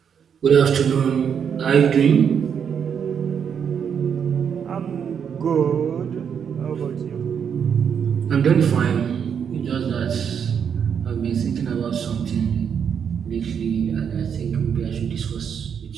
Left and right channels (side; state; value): left; quieter; 7.5 dB